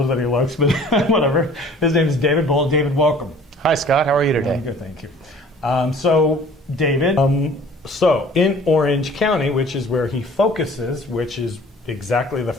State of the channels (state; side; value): normal; both; correlation 0.50